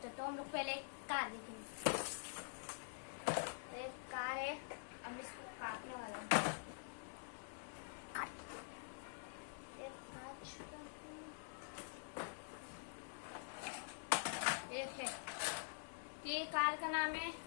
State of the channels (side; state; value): right; silent; digital silence